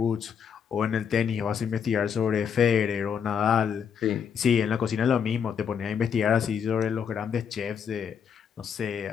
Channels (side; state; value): right; quieter; 7.3 dB